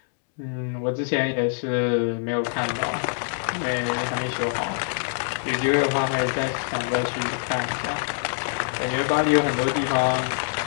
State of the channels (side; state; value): right; silent; digital silence